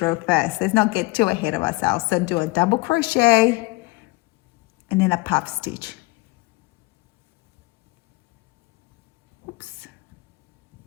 row first. Let's not get too ahead of ourselves. So do a double crochet and then a puff stitch. Oops.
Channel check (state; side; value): quieter; right; 23.7 dB